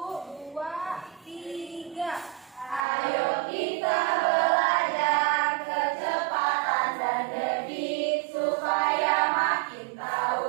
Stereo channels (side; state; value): left; drops out; at 2.9 s